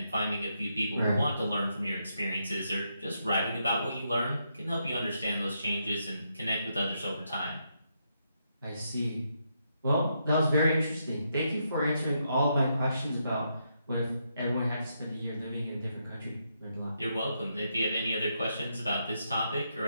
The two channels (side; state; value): both; inverted; correlation -0.80